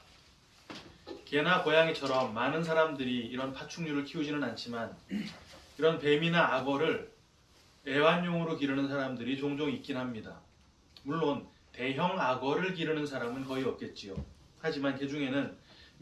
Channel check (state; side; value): identical; both; correlation 1.00